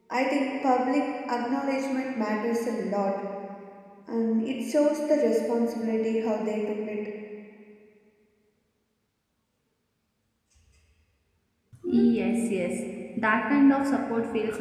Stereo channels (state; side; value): identical; both; correlation 1.00